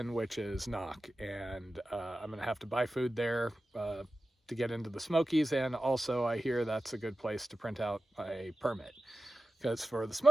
which is Knock. And I'm going to have to buy food there to get into the Smokies. And also, I hear that's a good place to print out a permit, because for the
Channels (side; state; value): both; normal; correlation 0.94